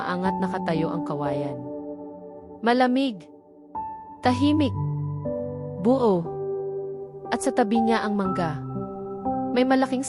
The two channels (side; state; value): both; identical; correlation 1.00